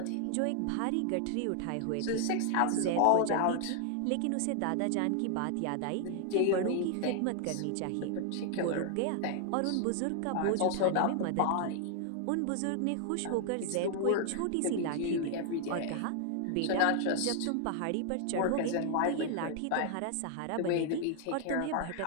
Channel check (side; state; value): both; different; correlation 0.00